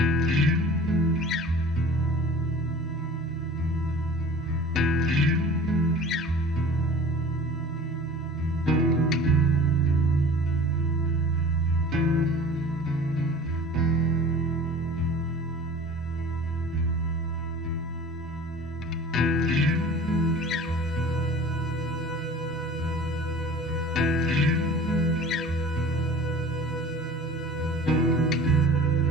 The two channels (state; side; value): normal; both; correlation 0.42